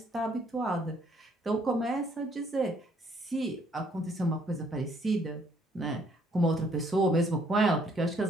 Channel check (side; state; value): both; normal; correlation 0.66